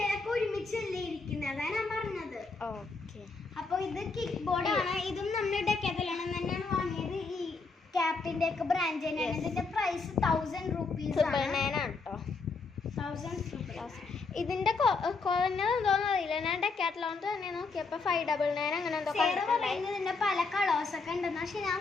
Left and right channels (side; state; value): right; quieter; 4.2 dB